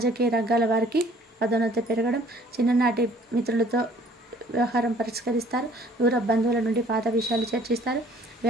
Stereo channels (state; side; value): normal; both; correlation 0.56